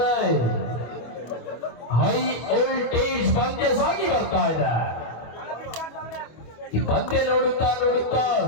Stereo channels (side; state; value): right; late; 25 ms